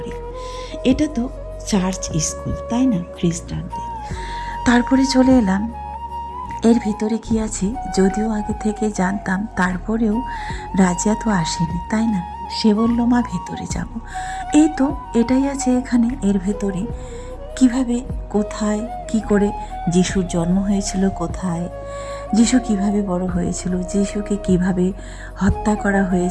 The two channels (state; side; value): identical; both; correlation 1.00